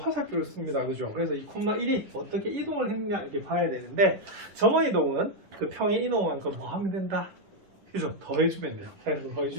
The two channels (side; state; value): left; late; 10 ms